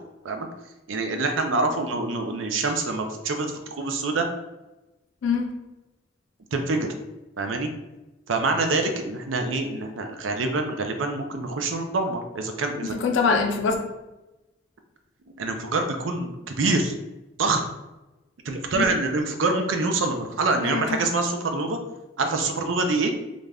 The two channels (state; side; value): normal; both; correlation 0.22